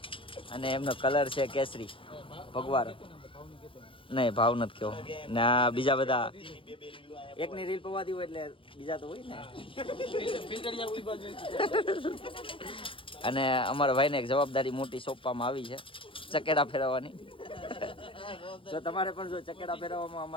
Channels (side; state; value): right; late; 0.25 ms